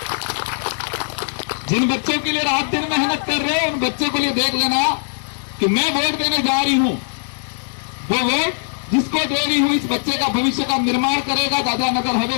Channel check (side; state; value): right; silent; 60 dB below the other